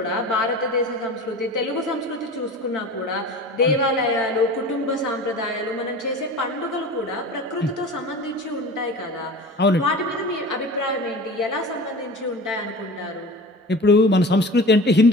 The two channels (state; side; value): normal; both; correlation 0.36